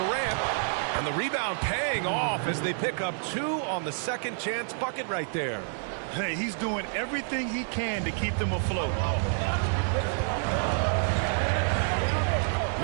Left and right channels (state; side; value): silent; left; 59 dB below the other